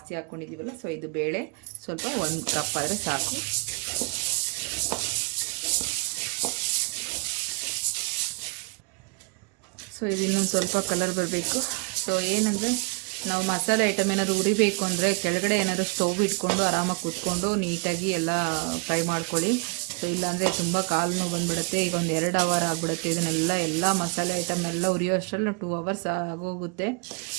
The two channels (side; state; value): left; quieter; 33.8 dB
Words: ಹಾಕ್ಕೊಂಡಿದ್ದೀವಲ್ಲ, ಸೊ ಇದು ಬೇಳೆ ಸ್ವಲ್ಪ 1 ಕಪ್ ಆದರೆ ಸಾಕು. ಸೊ ಇದು ಇನ್ನೊಂದು ಸ್ವಲ್ಪ ಕಲರ್ ಬರಬೇಕು. ಸೊ ಏನಂದರೆ ನಾವು ಮಸಾಲೆ ಐಟಮ್ ಏನಾದ್ರು ಉರಿಬೇಕು ಅಂದರೆ ಕೆಳಗಡೆ ಏನಾದ್ರು ಸ್ಟವ್ ಇಟ್ಕೊಂಡು ಆರಾಮಾಗಿ ಕೂತ್ಕೊಂಡು ನೀಟಾಗಿ ಎಲ್ಲ ಫ್ರೈ ಮಾಡ್ಕೊಳ್ಳಿ. ಸೊ ಇಲ್ಲಾಂದರೆ ತುಂಬ ಕಾಲು ನೋವು ಬಂದುಬಿಡುತ್ತೆ. ಈಗ ಒಂದು 2 ಅವರ್ ಆಗಿಬಿಡುತ್ತೆ. ಎಲ್ಲ ಮಸಾಲೆ ಐಟಮ್ ಎಲ್ಲ ಉರಿಯೋ ಅಷ್ಟರಲ್ಲಿ 2 ಅವರ್ಸ್ ಆಗೋಗುತ್ತೆ.